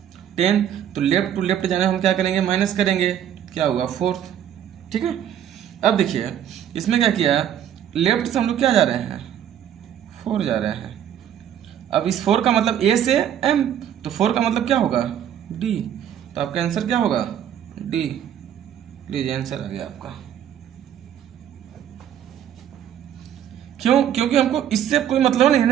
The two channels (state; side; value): quieter; left; 10.0 dB